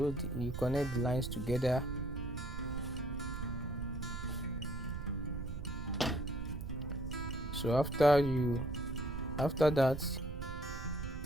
connect the lines together. So after that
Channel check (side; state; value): right; noise; rumble, 6 dB below the sound